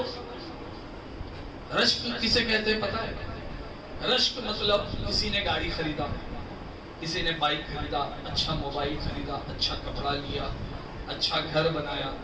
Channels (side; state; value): both; identical; correlation 1.00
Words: رشک کسے کہتے ہیں پتہ ہے؟ رشک مطلب کسی نے گاڑی خریدا، کسی نے بائک خریدا، اچھا موبائل خریدا، اچھا کپڑا لیا، اچھا گھر بنایا،